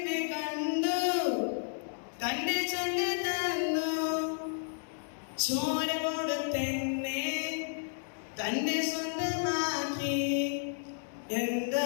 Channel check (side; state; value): right; silent; digital silence